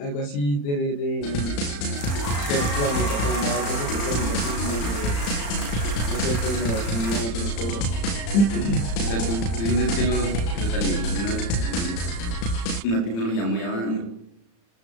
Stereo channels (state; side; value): late; right; 35 ms